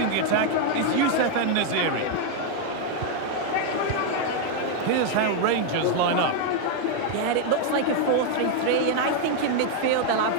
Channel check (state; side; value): different; both; correlation 0.00